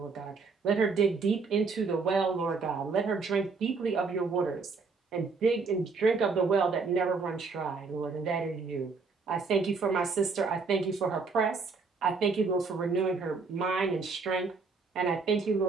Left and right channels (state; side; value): quieter; left; 4.5 dB